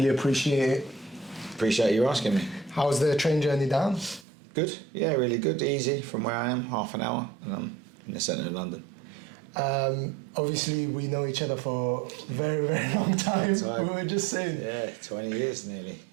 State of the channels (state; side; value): drops out; left; at 4.2 s